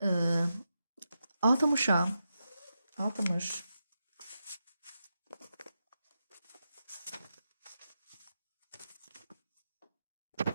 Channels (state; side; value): inverted; both; correlation -0.88